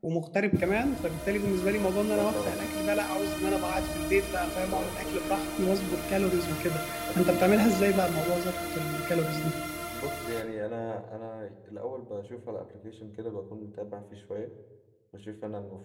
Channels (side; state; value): both; identical; correlation 1.00